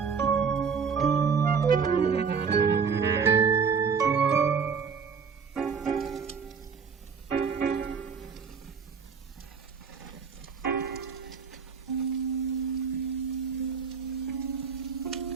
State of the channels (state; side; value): quieter; left; 6.0 dB